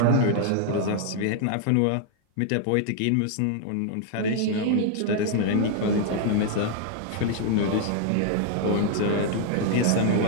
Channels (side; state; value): both; different; correlation 0.00